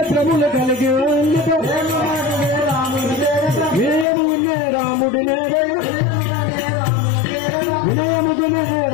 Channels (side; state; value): right; drops out; at 4.0 s